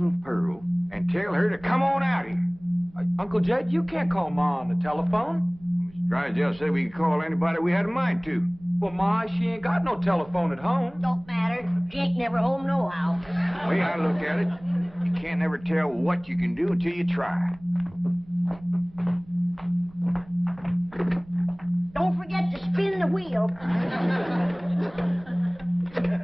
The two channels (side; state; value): right; noise; rumble, 23 dB below the sound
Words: Pearl and tell her to come on out here. Uncle Jed, you can't call Ma on the telephone. Mr. Drysdale said we could call anybody we had a mind to. Well, Ma, she ain't got no telephone at home. Don't matter. She ain't never home nohow. The way I look at it, you can't never tell what you can do until you try. Don't forget to spin the wheel.